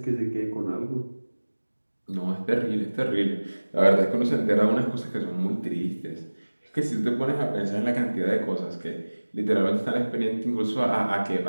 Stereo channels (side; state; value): both; inverted; correlation -1.00